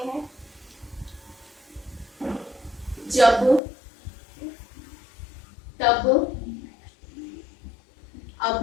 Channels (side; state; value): right; drops out; at 3.6 s